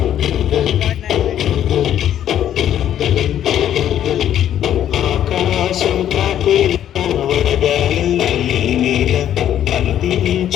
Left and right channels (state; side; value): quieter; right; 10.8 dB